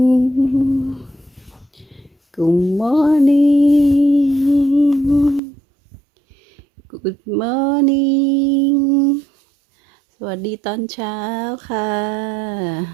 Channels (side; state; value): left; drops out; at 5.4 s